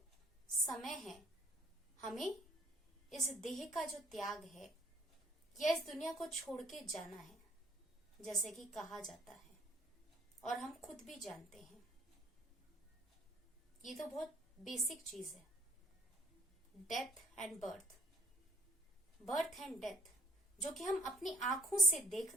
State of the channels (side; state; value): both; normal; correlation 0.57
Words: समय है, हमें इस देह का जो त्याग है या इस दुनिया को छोड़ के जाना है, जैसे कि कहा जाता है और हम खुद भी जानते हैं। ये तो बहुत बेसिक चीज है, death and birth, birth and death, जो कि हम अपनी आंखों से